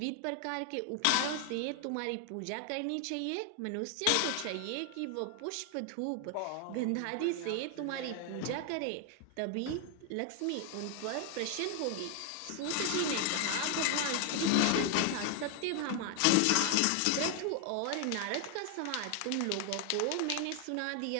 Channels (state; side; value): different; both; correlation 0.00